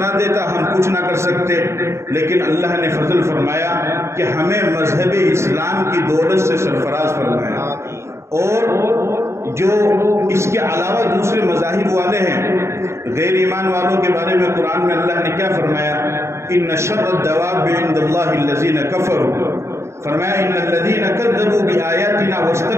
دیتا ہم کچھ نہ کر سکتے۔ لیکن اللہ نے فضل فرمایا کہ ہمیں مذہب اسلام کی دولت سے سرفراز فرمایا۔ اور جو اس کے علاوہ دوسرے مذاہب والے ہیں، غیر ایمان والوں کے بارے میں قرآن میں اللہ نے کیا فرمایا؟ ان شر الدواب عند اللہ الذین کفروا، فرمایا ان الذین کذبوا بآیاتنا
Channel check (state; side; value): late; left; 0.13 ms